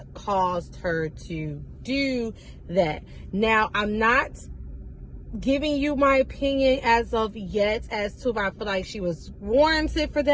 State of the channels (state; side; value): identical; both; correlation 1.00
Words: caused her to do that. Now, I'm not giving you my opinion as of yet as to if I feel like she was warranted for